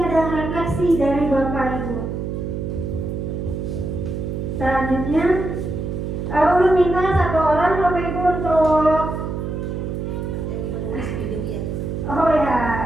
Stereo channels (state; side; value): noise; right; hum, 4 dB below the sound